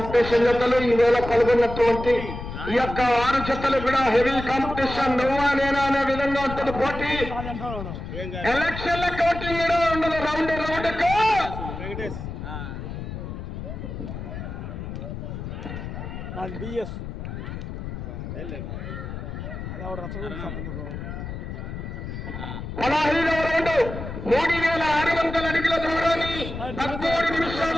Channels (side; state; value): left; noise; rumble, 8 dB below the sound